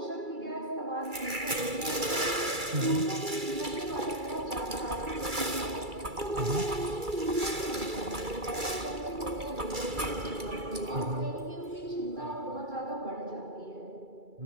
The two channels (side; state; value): left; late; 2.3 ms